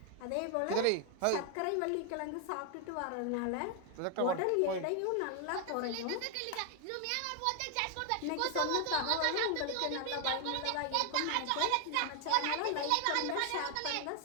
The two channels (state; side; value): different; both; correlation 0.01